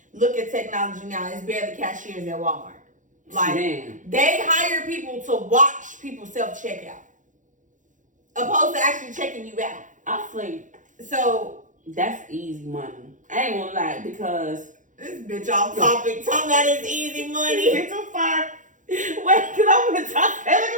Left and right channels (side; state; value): left; late; 0.37 ms